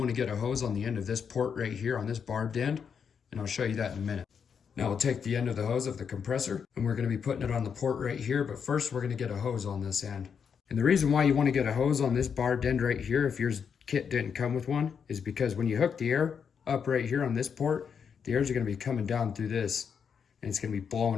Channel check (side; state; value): right; quieter; 6.9 dB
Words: to get a hose on the end of this port right here on this barbed end. And I'll show you that in a minute. Now we'll take the end of the hose of the compressor and we're going to be putting it on the port right here. But first we're going to get a hose on this end. And the reason why you want to get a hose on this barbed end right here, if your kit didn't come with one, is because when you hook the air up right here on this port, the air is going to be coming down through this. And it's going to be